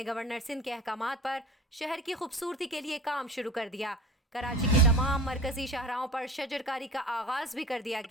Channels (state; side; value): normal; both; correlation 0.38